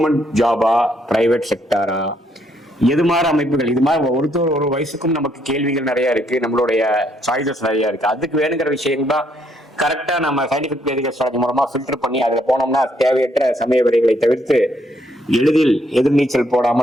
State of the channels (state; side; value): normal; both; correlation 0.71